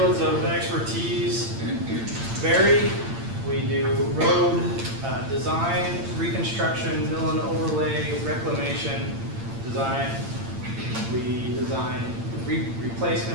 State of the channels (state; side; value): late; left; 8.8 ms